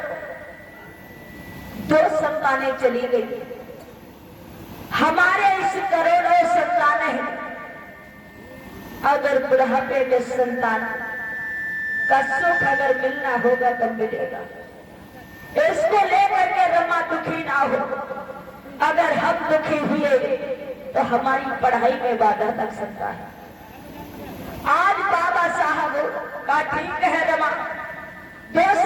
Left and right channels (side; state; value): both; identical; correlation 1.00